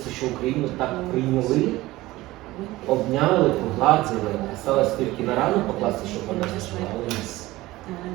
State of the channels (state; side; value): quieter; left; 18.3 dB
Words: що Україну так прийняли, обняли, погладили, сталося тільки на рану покласти, щоб вона зажила, але